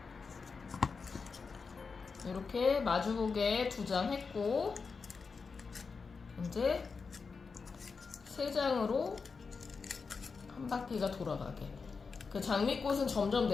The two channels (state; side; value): quieter; right; 4.9 dB